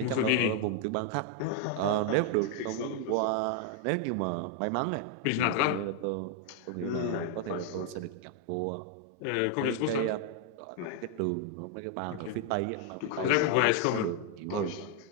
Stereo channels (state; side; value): different; both; correlation 0.00